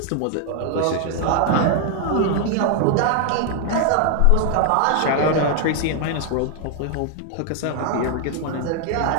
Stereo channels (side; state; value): both; different; correlation 0.00